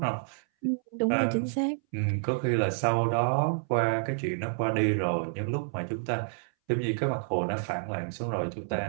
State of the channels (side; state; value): left; silent; 59 dB below the other